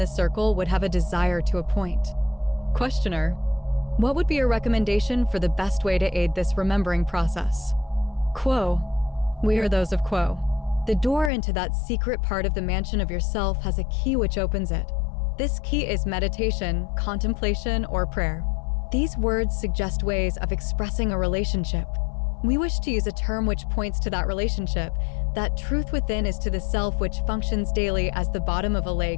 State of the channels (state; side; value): drops out; right; at 11.3 s